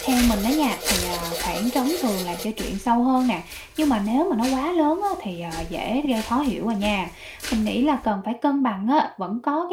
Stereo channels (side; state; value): both; identical; correlation 1.00